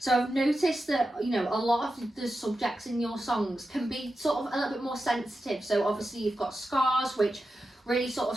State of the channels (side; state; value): both; normal; correlation 0.91